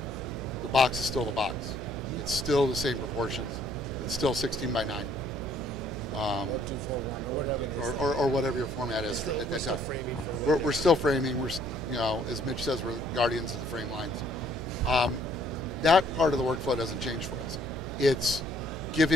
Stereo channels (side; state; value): right; noise; hum, 8 dB below the sound